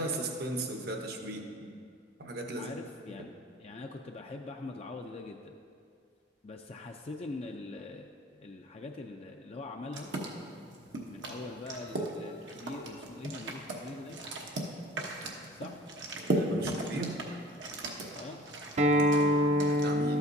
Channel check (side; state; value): both; normal; correlation 0.46